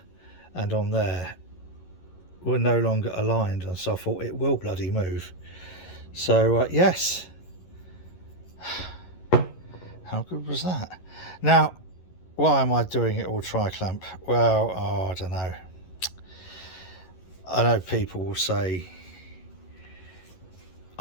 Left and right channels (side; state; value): right; late; 11 ms